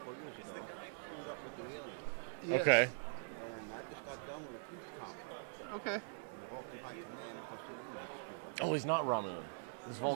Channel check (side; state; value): left; silent; digital silence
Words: of years ago, screwed up with the aliens. Yes. Okay. And I just got done with a peace conference. Okay. In the Vulcan High Command because the humans screwed up. Oh, he's not Romulan. He's